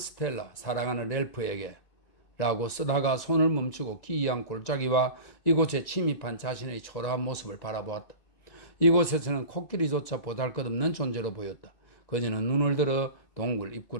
사랑하는 렐프에게 라고 쓰다가 손을 멈추고 기이한 골짜기와 이곳에 침입한 자신의 초라한 모습을 바라보았다. 이곳에서는 코끼리조차 보잘것없는 존재로 보였다. 그녀는 눈을 들어 동굴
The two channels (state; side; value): late; right; 2.0 ms